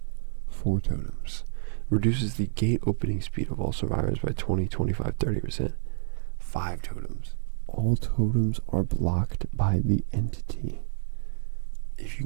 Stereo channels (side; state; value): left; silent; 59 dB below the other